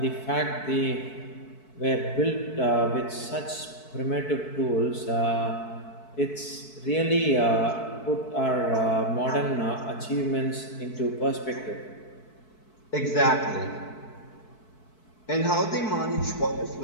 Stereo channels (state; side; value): late; right; 4.6 ms